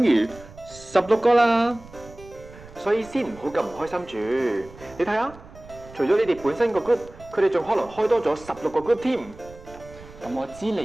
於16個啦。所以先唔好咁唔開心住。你睇下，除咗你哋本身個 group，佢哋仲可能開多咗16個 group 添。咁我知嚟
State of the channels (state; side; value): noise; right; rumble, 20 dB below the sound